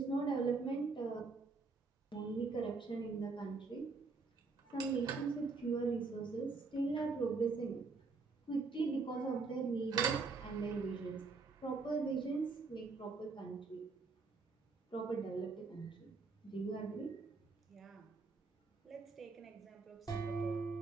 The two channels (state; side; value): quieter; left; 4.3 dB